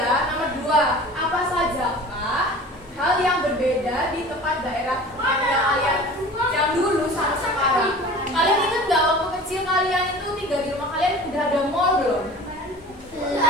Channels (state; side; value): normal; both; correlation 0.41